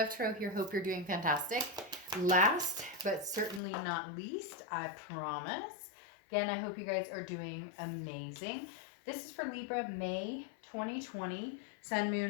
Tarot here. Hope you're doing fantastic. Last but certainly not least, I promise. Again, I hope you guys are doing amazing. This is for Libra, May 2020, Sun,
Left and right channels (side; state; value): right; drops out; at 3.6 s